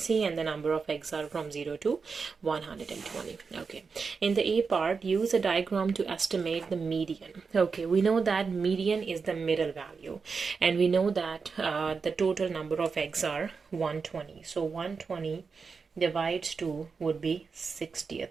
and the number of eggs are from 0 to 120. Okay, in the A part, use a diagram to estimate the median. Okay, we know that median is the middle value, and we know that the total number of eggs are 120. So 120 divides 2 would be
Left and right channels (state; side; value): quieter; left; 5.1 dB